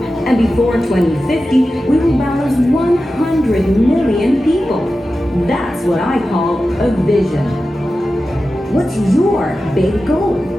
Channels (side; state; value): both; normal; correlation 0.93